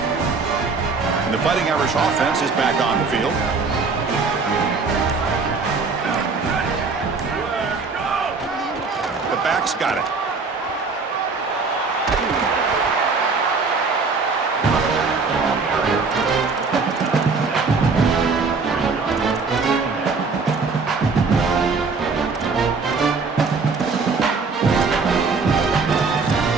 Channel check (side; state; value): left; quieter; 4.5 dB